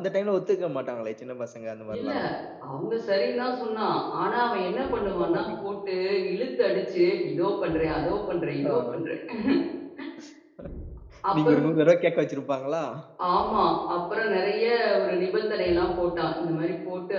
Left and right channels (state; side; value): identical; both; correlation 1.00